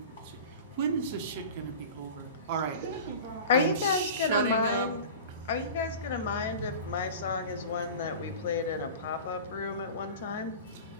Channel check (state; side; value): inverted; both; correlation -0.36